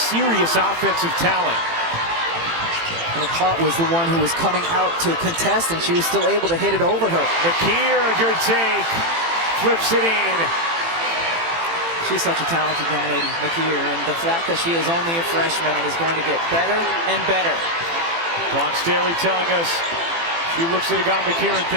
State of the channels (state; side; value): late; left; 18 ms